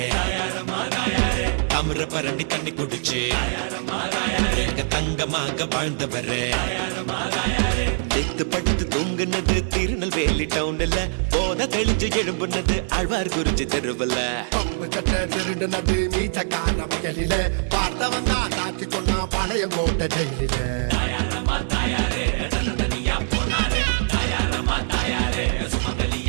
தாமிர பரணி தண்ணி குடிச்சு தங்கமாக வாழ்ந்தவரே நெத்து படுத்து தூங்குனது திருநெல்வேலி டவுன்ல போத தெளிஞ்சு எழும்புனது ஆழ்வார் குறிஞ்சி தெருவுல பம்பு சட்டை திருடுனது மீச்சக்கார வயலில பார்த்தவன் தான் காட்சி சொன்னா பாளையங்கோட்டை ஜெயிலில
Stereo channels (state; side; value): silent; left; digital silence